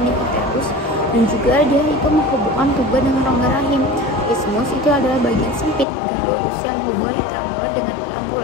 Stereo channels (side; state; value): right; drops out; at 5.9 s